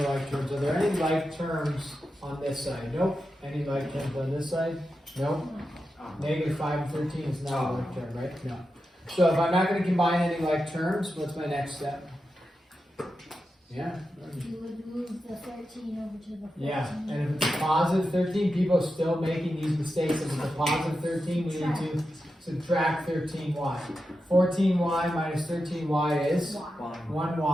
like terms. Are there any like terms on this side? Nope. Any like terms on this side? Nope. -5 and 13 is not a like term, right? No. So if I'm not going to combine any like terms, what's my next step? Yeah. You would move the 13 over to the 14. Yeah, and if it's a positive 13, people are still making these mistakes. If it's a positive 13, we need to subtract 13y. 14y minus 13y is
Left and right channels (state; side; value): normal; both; correlation 0.89